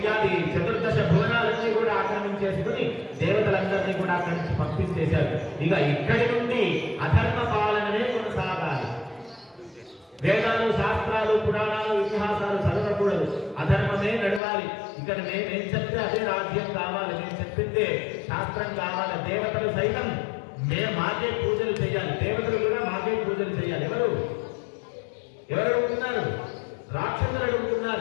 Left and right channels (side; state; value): right; drops out; at 14.4 s